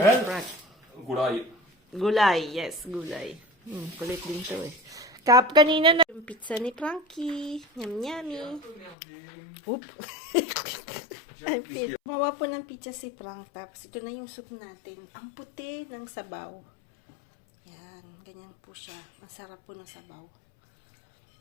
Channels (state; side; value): drops out; right; at 9.0 s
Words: ni Frank. Gulay. Gulay, yes, gulay. Kulit din to eh. Kanina na yung pizza ni Frankie. Yum, yummy. Oop. Mawa po ng pizza si Frank. Tapos ito na yung soup natin. Ang puti ng sabaw. Yan, ganyan po siya. Masarap po ng sabaw.